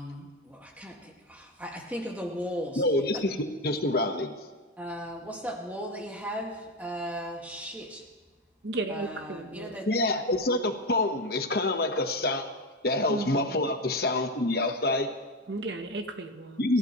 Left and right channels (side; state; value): both; normal; correlation 0.16